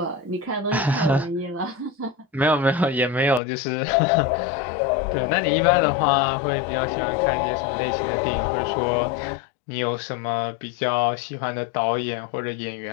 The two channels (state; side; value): drops out; right; at 3.4 s